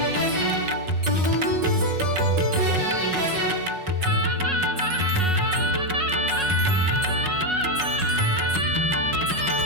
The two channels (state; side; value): late; left; 5.4 ms